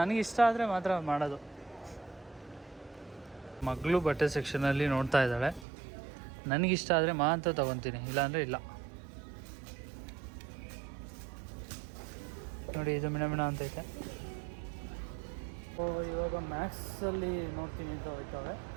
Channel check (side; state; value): left; drops out; at 5.7 s